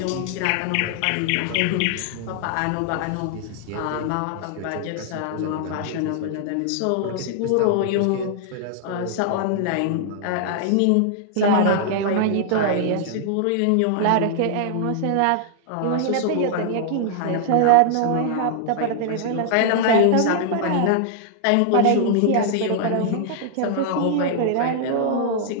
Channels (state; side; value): different; both; correlation -0.01